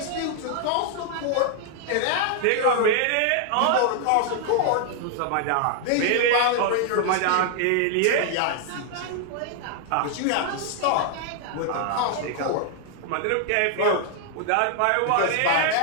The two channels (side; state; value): both; different; correlation 0.00